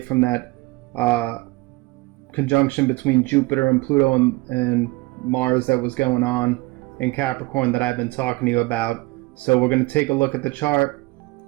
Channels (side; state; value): left; quieter; 22.6 dB